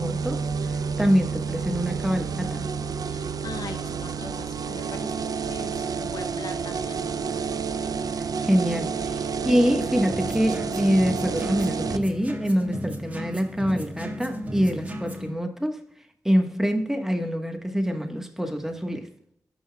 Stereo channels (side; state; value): both; normal; correlation 0.89